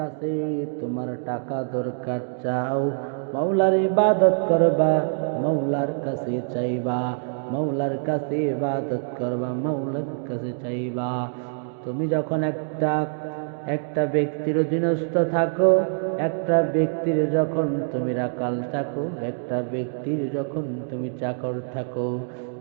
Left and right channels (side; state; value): left; silent; digital silence